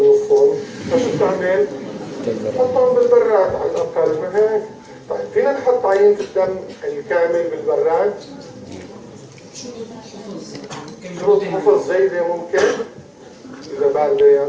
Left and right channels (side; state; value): both; identical; correlation 1.00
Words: نصهم، فشو بتعمل؟ تحطهم بالبراد على الاقل، ما هيك؟ طيب فينا نحط عينة الدم الكامل بالبراد؟ شروط حفظ جيدة ممكن؟ إذا باردة